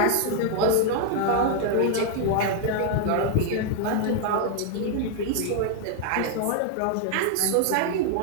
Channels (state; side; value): different; both; correlation 0.00